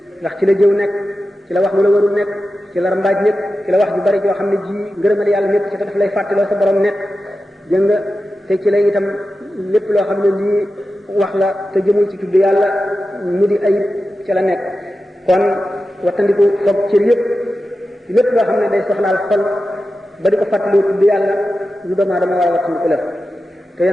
ndax ci la jëw nekk ci la wax lu la warul nekk ci la rambaaj nekk ci la wax ju bari joo xam ne ji ngërëmal yàlla nekk ci te daf lay fàttaloo sa borom nekk jëng nga te ci la itam lépp loo xam ne lii wax la te jëmul ci tudd yàlla mu di ayib ci la nekk kon wattandiku foog cër yépp lépp loo xam ne day soxlaal xol ba di ko fàttaloo tudd yàlla lu doomu aadama war a wattandiku la te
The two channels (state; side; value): normal; both; correlation 0.92